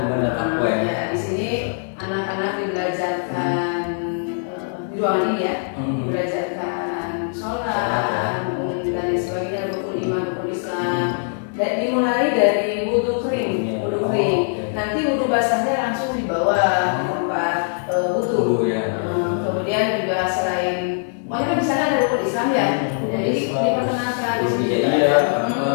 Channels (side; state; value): right; silent; digital silence